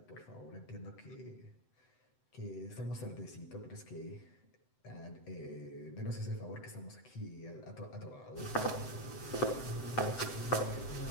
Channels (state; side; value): late; right; 7.8 ms